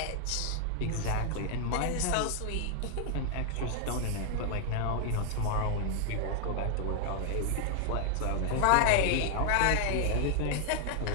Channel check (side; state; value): both; different; correlation 0.00